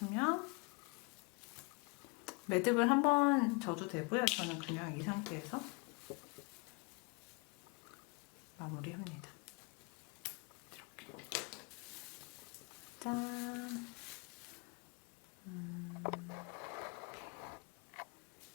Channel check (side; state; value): right; quieter; 29.3 dB